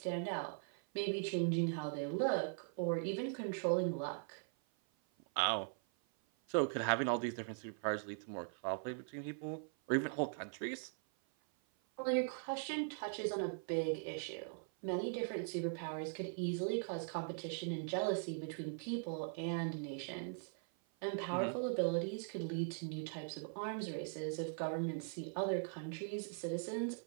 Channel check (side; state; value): left; silent; 50 dB below the other